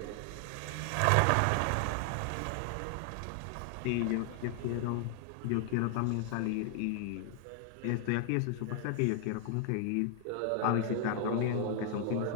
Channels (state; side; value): different; both; correlation 0.00